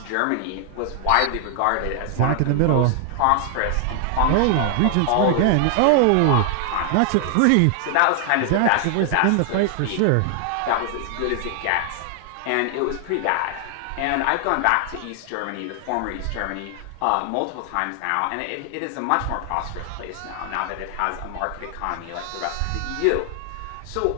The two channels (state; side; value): different; both; correlation 0.00